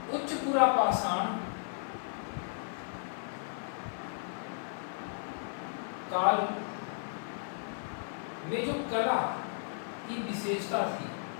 उच्च पुरा पाषाण काल में जो कला की विशेषता थी,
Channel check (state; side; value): silent; right; 55 dB below the other